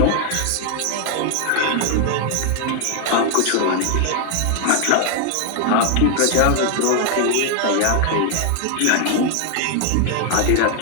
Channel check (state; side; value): different; both; correlation 0.00